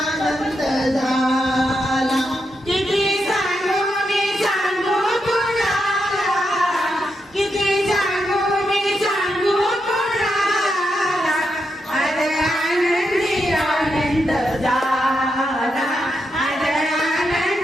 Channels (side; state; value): both; normal; correlation 0.84